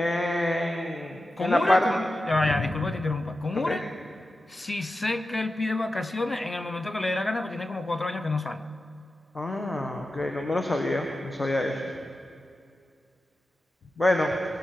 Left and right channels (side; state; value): both; normal; correlation 0.92